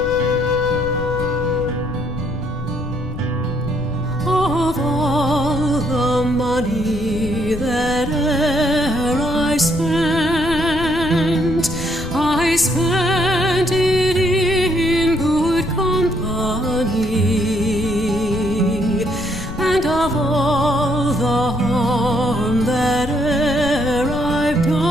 Of all the money that e'er I spent it in good company, and of all the harm that e'er I've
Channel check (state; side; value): noise; left; rumble, 8 dB below the sound